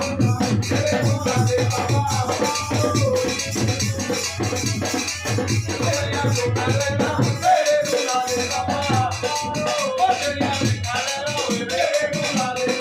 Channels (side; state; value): both; identical; correlation 1.00